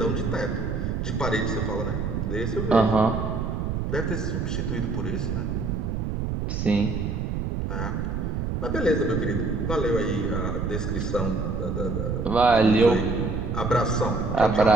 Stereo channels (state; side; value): noise; right; rumble, 2 dB below the sound